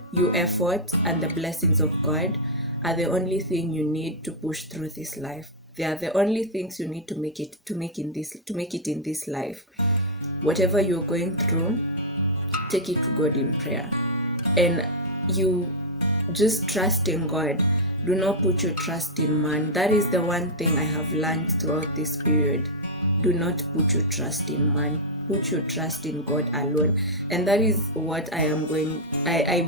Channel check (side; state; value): both; normal; correlation -0.04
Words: your effort and the blessings of God are the only thing you need to push through this life. They are the only things you need to make it in this life. Whatever you're going through, take it to God in prayer, and you just trust in God. Do not put your trust in man. That is the one thing I have learned throughout this period. Do not put your trust in man. Put your trust in God alone. And that is what I